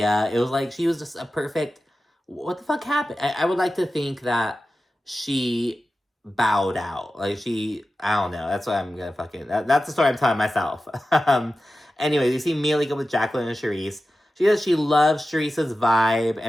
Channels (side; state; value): both; normal; correlation 0.94